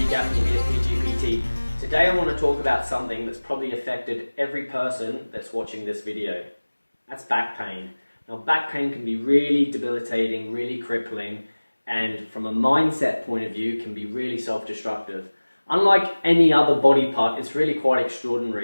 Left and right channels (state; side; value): inverted; both; correlation -1.00